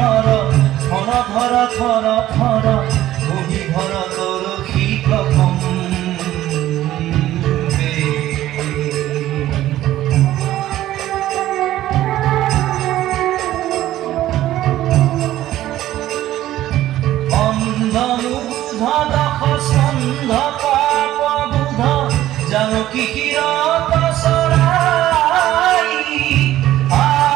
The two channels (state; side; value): quieter; left; 13.9 dB